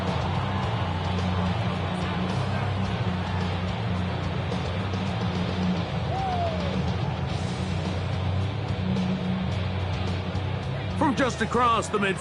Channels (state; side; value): identical; both; correlation 1.00